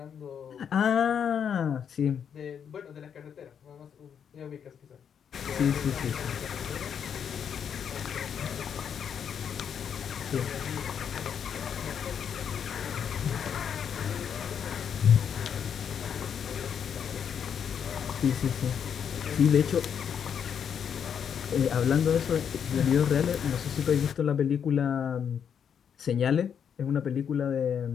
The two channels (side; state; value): right; quieter; 7.8 dB